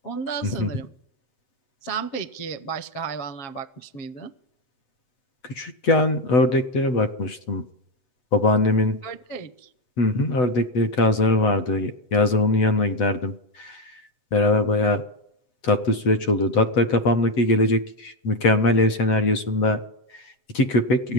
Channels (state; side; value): late; right; 8.0 ms